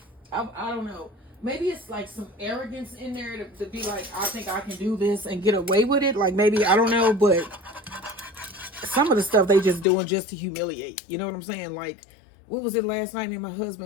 I don't know. Maybe it's like some arrogance in there to be like, I think I can do this and get away with it. Like maybe, I don't know, but some of the stuff they just doing just to humiliate. You know what I'm saying? Like, what was it last night? Me and my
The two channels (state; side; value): drops out; right; at 9.9 s